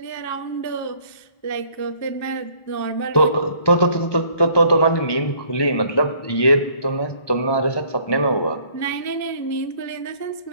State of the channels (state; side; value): late; right; 1.2 ms